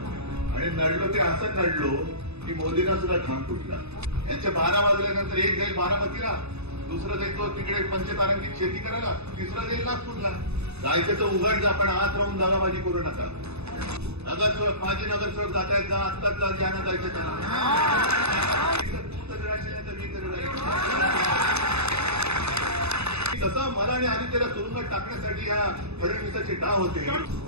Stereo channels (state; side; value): late; left; 0.80 ms